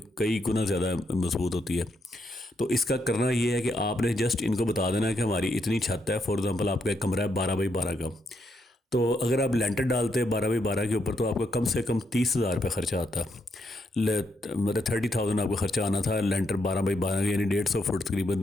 कई गुना ज़्यादा मजबूत होती है। तो इसका करना ये है कि आपने जस्ट इनको बता देना है कि हमारी इतनी छत है। फॉर एग्जांपल आपका एक कमरा है 12 बाई 12 का, तो अगर आप लेंटर डालते हैं 12 बाई 12 के ऊपर तो आपका कम से कम 30,000 रुपये खर्चा आता है। मतलब 30,000 आपका खर्चा आना था लेंटर 12 बाई 12 यानी 150 फुट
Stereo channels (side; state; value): both; normal; correlation 0.78